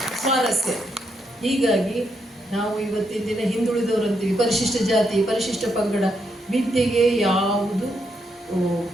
ಸ್ವಾರಸ್ಯ. ಹೀಗಾಗಿ ನಾವು ಇವತ್ತಿನ ದಿನ ಹಿಂದುಳಿದವರು ಅಂತೀವಿ, ಪರಿಶಿಷ್ಟ ಜಾತಿ, ಪರಿಶಿಷ್ಟ ಪಂಗಡ, ವಿದ್ಯೆಗೆ ಯಾವುದು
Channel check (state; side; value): normal; both; correlation 0.79